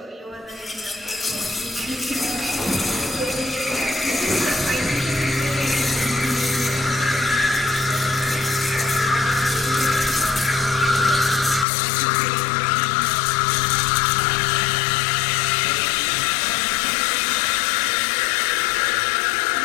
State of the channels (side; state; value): right; drops out; at 11.7 s